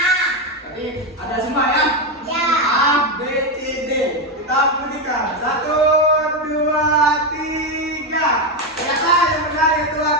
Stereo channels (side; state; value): both; normal; correlation 0.09